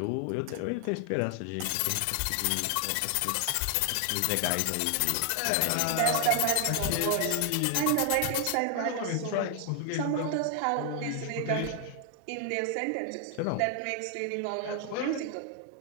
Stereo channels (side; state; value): both; different; correlation 0.00